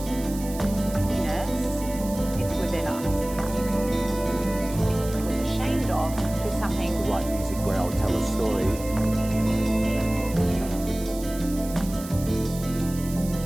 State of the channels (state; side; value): noise; right; hiss, 14 dB below the sound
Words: It's within us. It was ashamed of to something. Like music where I'll tell a story.